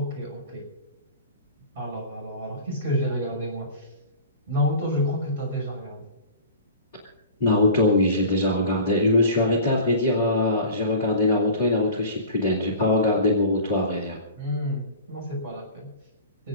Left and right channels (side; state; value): both; inverted; correlation -0.39